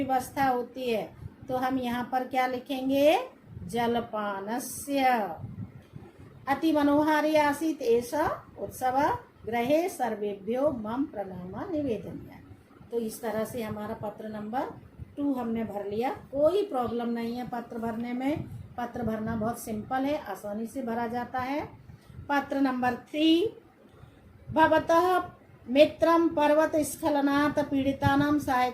होती है। तो हम यहाँ पर क्या लिखेंगे, जलपानस्य। अति मनोहारी आसीत एषा उत्सव, गृहे सर्वेभ्यो मम प्रणाम निवेदनीय। तो इस तरह से हमारा पत्र नंबर 2 हमने भर लिया। कोई प्रॉब्लम नहीं है पत्र भरने में, पत्र भरना बहुत सिंपल है, आसानी से भरा जाता है। पत्र नंबर 3, भवतः मित्रं पर्वत स्खलनात् पीड़ितानां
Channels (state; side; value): identical; both; correlation 1.00